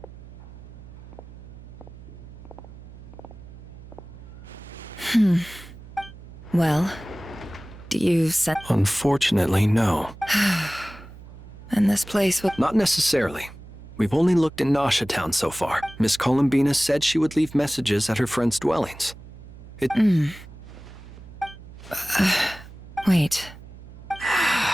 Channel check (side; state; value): right; noise; hum, 17 dB below the sound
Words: Well, do you set? Unfortunately, no. And this place will. Not necessarily. We've only looked in Nasha Town so far. Miss Columbina said she would leave messages at her friends' dwellings. It. Wait.